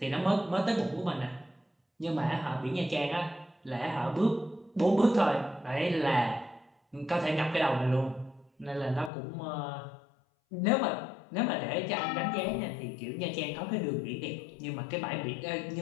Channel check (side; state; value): right; drops out; at 9.1 s